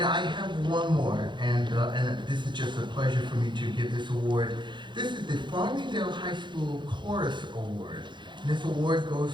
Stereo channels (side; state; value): left; late; 0.23 ms